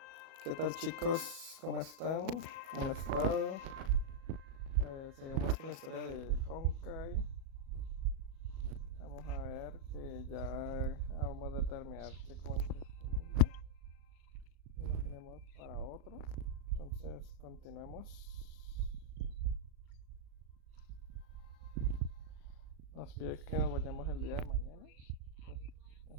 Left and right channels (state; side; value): late; left; 37 ms